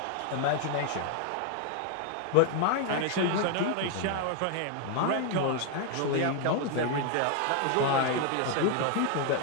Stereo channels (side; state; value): both; different; correlation 0.00